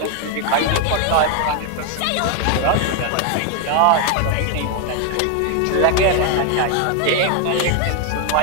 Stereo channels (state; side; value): different; both; correlation 0.01